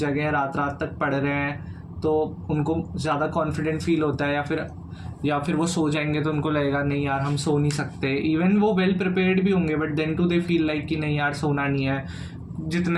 जगे हैं, रात रात तक पढ़ रहे हैं, तो उनको ज़्यादा कॉन्फिडेंट फील होता है, या फिर वो सो जाएंगे तो उनको लगेगा नहीं यार हम सो नहीं सकते. इवन वो वेल प्रिपेयर्ड भी होंगे but then too they feel like कि नहीं यार सोना नहीं है,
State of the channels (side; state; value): both; identical; correlation 1.00